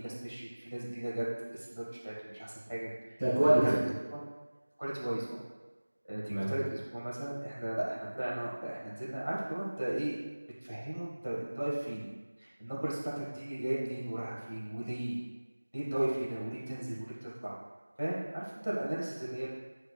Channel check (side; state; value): both; inverted; correlation -1.00